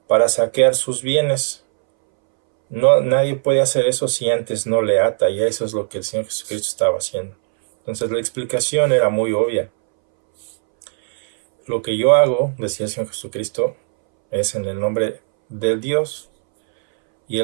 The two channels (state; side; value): silent; left; 65 dB below the other